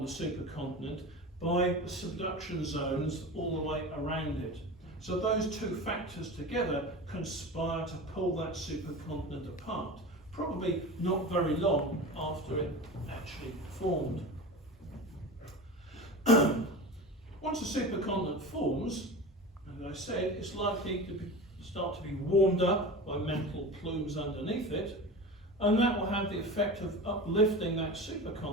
the supercontinent by the subduction zones all the way around it. So those two factors together conspire to pull that supercontinent apart, probably not very long after it actually formed. Once a supercontinent forms, as I said, it's likely to start to be warmed up by mantle plumes underneath it, and that will have the effect of uplifting that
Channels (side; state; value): both; normal; correlation 0.31